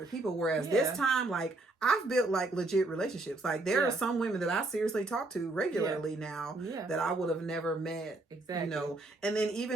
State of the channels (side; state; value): left; quieter; 3.0 dB